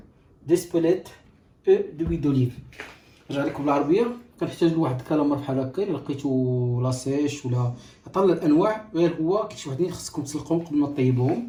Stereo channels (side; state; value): both; identical; correlation 1.00